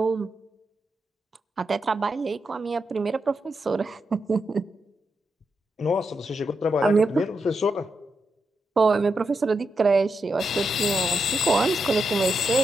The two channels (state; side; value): normal; both; correlation 0.85